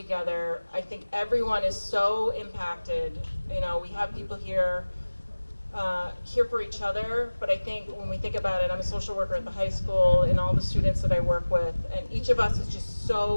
I think everyone is so impacted. We have people here for each other, but I think when we think about it, I'm a social worker at the high school and all the students that I work with, and each of us is just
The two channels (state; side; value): inverted; both; correlation -1.00